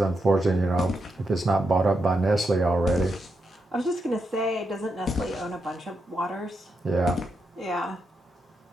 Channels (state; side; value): normal; both; correlation 0.84